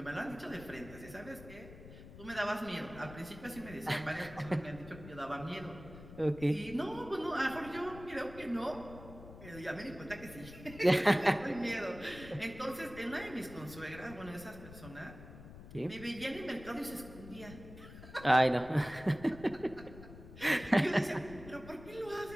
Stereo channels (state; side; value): noise; left; rumble, 15 dB below the sound